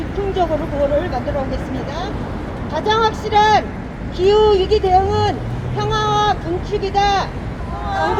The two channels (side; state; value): both; identical; correlation 1.00